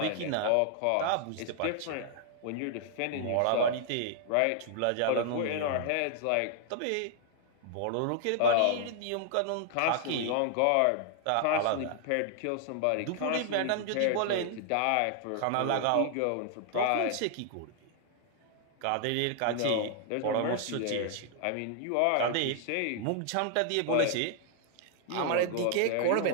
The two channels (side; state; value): both; different; correlation 0.00